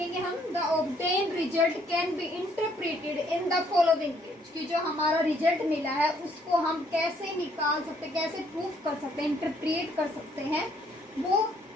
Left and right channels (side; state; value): both; normal; correlation 0.66